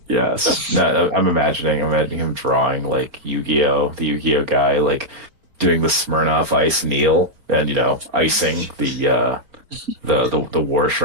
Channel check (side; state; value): left; late; 4.5 ms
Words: Yes. No, I'm imagining him drawing like Yu-Gi-Oh, the Yu-Gi-Oh guy, like doing the Smirnoff Ice kneel and icing the war